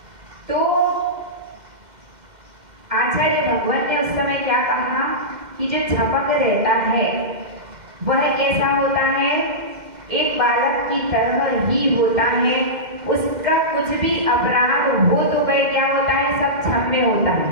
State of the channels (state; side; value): late; left; 2.1 ms